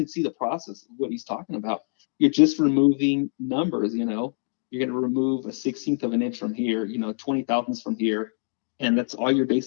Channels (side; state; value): right; silent; digital silence